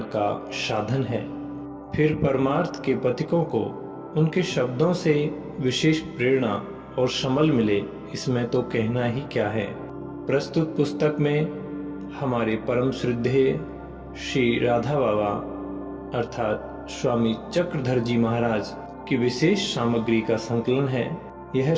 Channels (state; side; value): identical; both; correlation 1.00